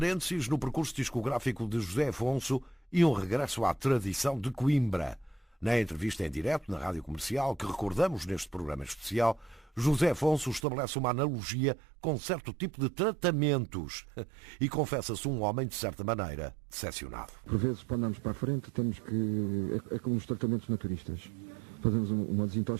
no percurso discográfico de José Afonso e um regresso à tradição de Coimbra. Na entrevista em direto na Rádio Comercial, que recordamos neste programa especial, José Afonso estabelece uma analogia com certo tipo de tratamentos e confessa-se um homem, de certa maneira, decepcionado. Por vezes, para andarmos para a frente, temos que... É como os tratamentos naturistas. fazemos uma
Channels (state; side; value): drops out; left; at 10.6 s